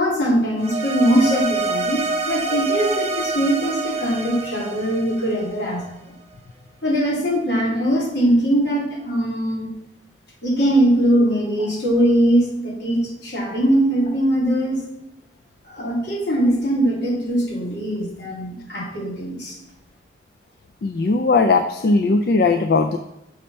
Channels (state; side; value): normal; both; correlation 0.57